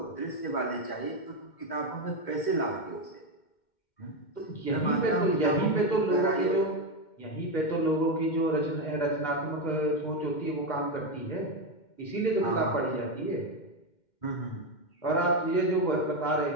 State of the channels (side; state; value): right; late; 2.1 ms